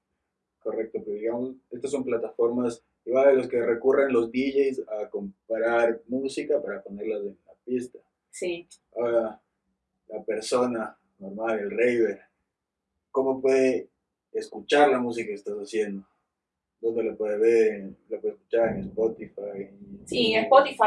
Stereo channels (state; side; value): identical; both; correlation 1.00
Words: Correcto, pero digamos, estas son plataformas igual a los que recurren los DJs a comprar música para ponerlas en la pista. Sí. Ahora, la persona normal, el raver, ¿cómo puede escuchar la música que estás haciendo? ¿Dónde lo puede ver? ¿Lo puede escuchar en Spotify? Sí,